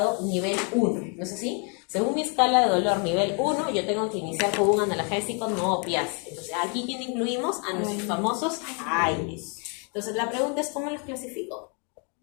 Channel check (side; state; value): right; quieter; 36.8 dB